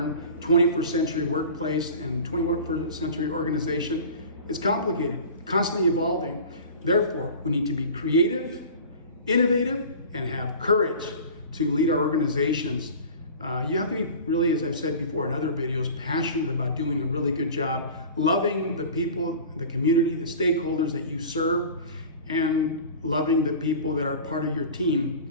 21st century workplace and 21st century organization, it's complicated, constantly evolving. Therefore, we need to be creative, innovative, and have courage to lead our organizations. You have to be really, as I've said before in other videos, passionate about doing a really good job, loving the people, the community, the stakeholders that you serve, and loving the people that are part of your team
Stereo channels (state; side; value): inverted; both; correlation -0.39